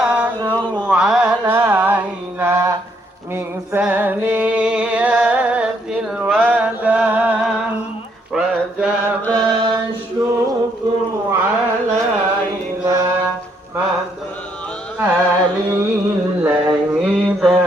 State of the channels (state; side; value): normal; both; correlation 0.71